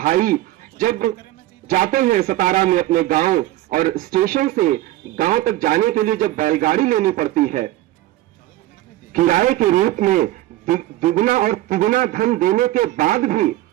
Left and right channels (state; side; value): quieter; left; 15.8 dB